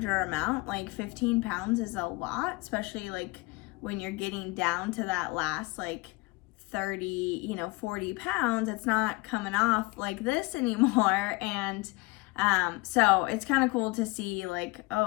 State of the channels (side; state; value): right; quieter; 24.1 dB